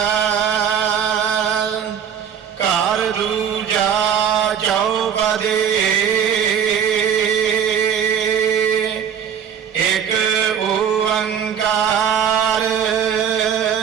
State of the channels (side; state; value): left; quieter; 8.3 dB